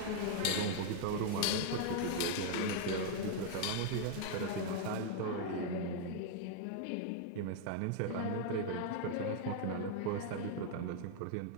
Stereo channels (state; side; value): different; both; correlation 0.00